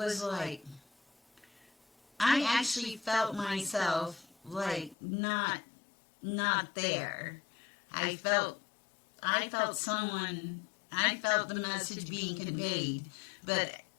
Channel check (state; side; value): drops out; right; at 5.0 s